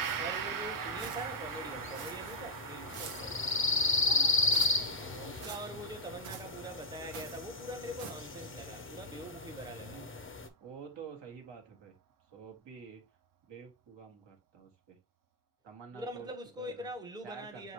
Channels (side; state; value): both; normal; correlation -0.04